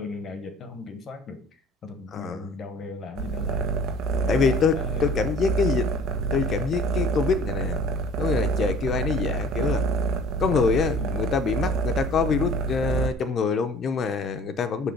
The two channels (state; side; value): normal; both; correlation 0.48